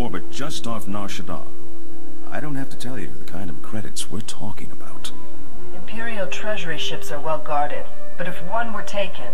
just off Nar Shaddaa. I don't have to tell you the kind of credits we're talking about. Imperial Treasury ships are well guarded, but if one were taken,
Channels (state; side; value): identical; both; correlation 1.00